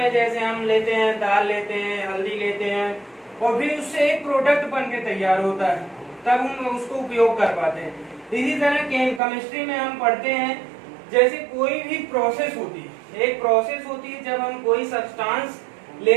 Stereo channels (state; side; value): drops out; left; at 9.2 s